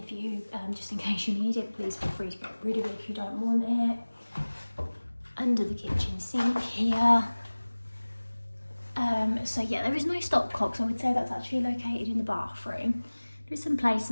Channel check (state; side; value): inverted; both; correlation -1.00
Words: for you just in case you need it. Please feel free to get rid of it if you don't want it. Under the kitchen sink here. So yeah, there is no stopcocks. I would say that's actually located in the bathroom. There's some